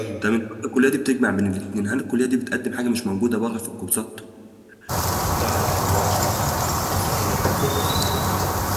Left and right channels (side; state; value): both; identical; correlation 1.00